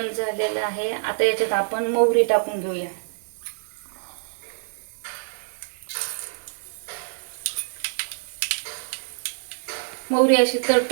झालेलं आहे. आता याच्यात आपण मोहरी टाकून घेऊया. मोहरी अशी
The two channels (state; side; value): silent; left; 61 dB below the other